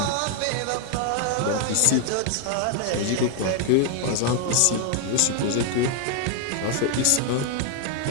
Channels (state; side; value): different; both; correlation 0.00